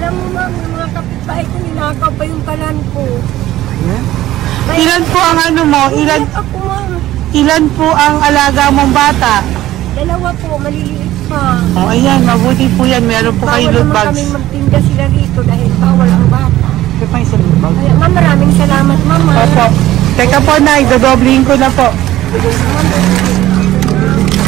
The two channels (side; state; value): left; quieter; 14.8 dB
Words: mo ma'am, yung mga kapitbahay ko, ninakaw pa yung kalan ko. Ilan po ang ano mo? Umiyak ako ma'am. Ilan po ang alaga mong bata? Dalawa po, maliliit pa. O, ayan, mabuti po yan. Meron po kayo Bawal loot naman bags. kami magtinda sila rito dahil bawal ang bata. Ito pa yung sa loot bag. Kaya ma'am, maraming salamat mama. Opo. Teka po, Nay, dodoblihin ko na po.